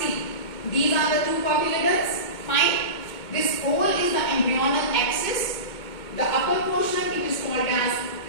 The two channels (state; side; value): late; right; 2.2 ms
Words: These are the two cotyledons. Fine. This whole is the embryonal axis. The upper portion it is called as